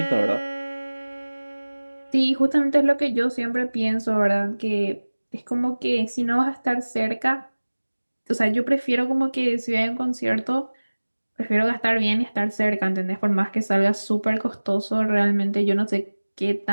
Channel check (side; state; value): both; inverted; correlation -1.00